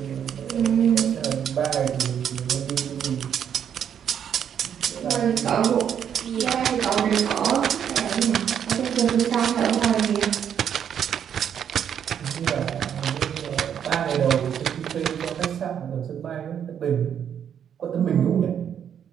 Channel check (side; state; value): left; quieter; 8.7 dB